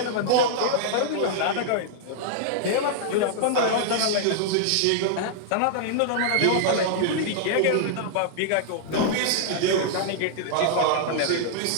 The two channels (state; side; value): different; both; correlation -0.01